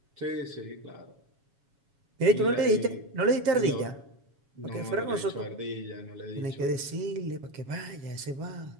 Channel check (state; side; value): late; left; 7.2 ms